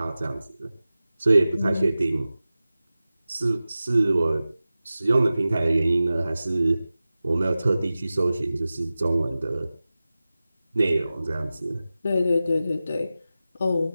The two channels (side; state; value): both; inverted; correlation -0.95